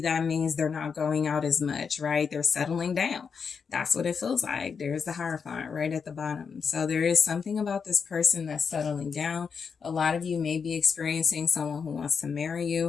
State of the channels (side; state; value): right; quieter; 6.0 dB